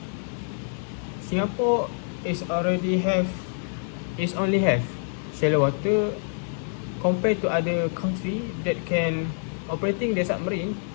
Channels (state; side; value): silent; right; digital silence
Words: Singapore only have shallow water compared to other country that can operating the submarine